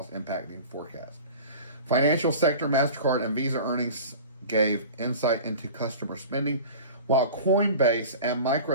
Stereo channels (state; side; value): inverted; both; correlation -0.38